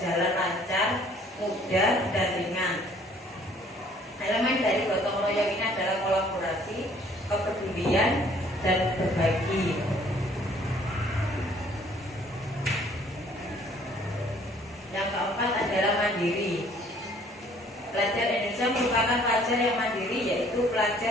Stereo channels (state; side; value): normal; both; correlation 0.58